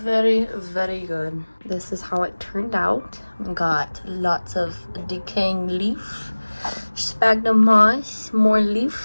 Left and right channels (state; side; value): inverted; both; correlation -1.00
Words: very good. This is how it turned out. Got lots of decaying leaf, sphagnum moss, more